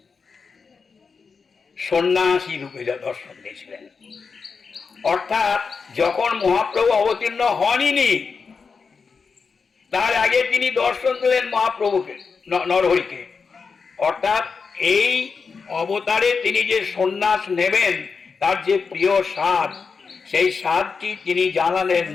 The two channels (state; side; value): quieter; right; 5.2 dB